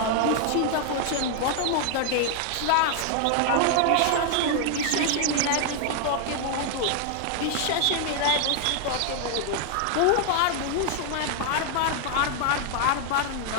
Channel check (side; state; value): both; different; correlation 0.00